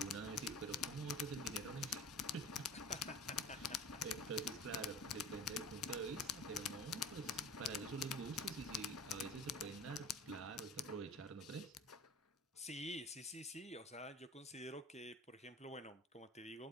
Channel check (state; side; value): normal; both; correlation 0.38